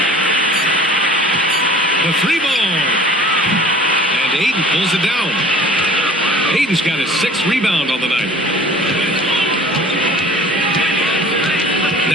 The 3 ball. And Ayton pulls it down. Ayton's got his 6th rebound on the night.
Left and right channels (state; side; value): normal; both; correlation 0.46